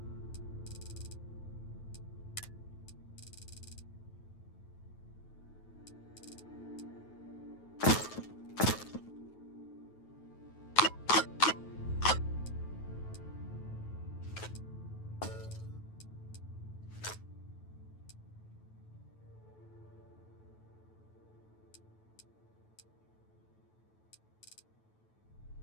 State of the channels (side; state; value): right; late; 9.2 ms